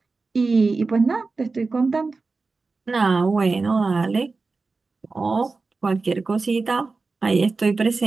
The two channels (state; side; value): quieter; left; 4.0 dB